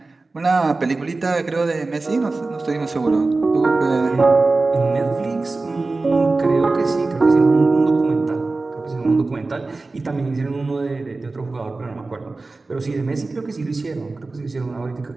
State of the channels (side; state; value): left; quieter; 3.5 dB